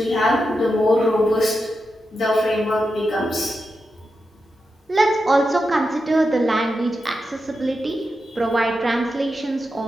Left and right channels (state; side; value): normal; both; correlation 0.88